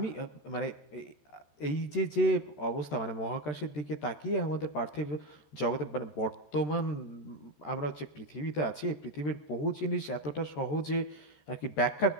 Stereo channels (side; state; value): right; late; 13 ms